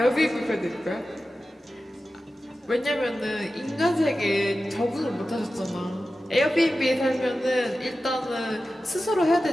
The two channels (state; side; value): normal; both; correlation 0.94